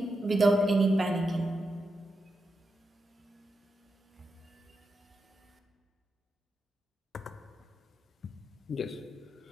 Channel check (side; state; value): both; normal; correlation 0.87